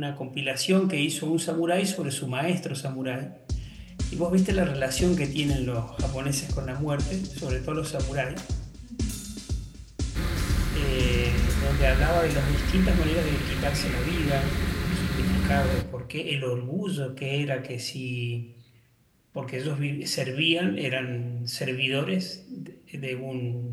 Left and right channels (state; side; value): identical; both; correlation 1.00